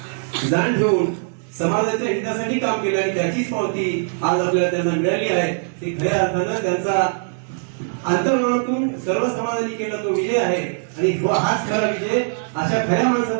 जाण ठेवून समाजाच्या हितासाठी काम केलं आणि त्याचीच पावती आज आपल्याला त्यांना मिळाली आहे। ती खऱ्या अर्थानं त्यांचा अंतर्मनातून सर्व समाजाने केला तो विजय आहे आणि हाच खरा विजय, अशा खऱ्या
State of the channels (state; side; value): silent; left; digital silence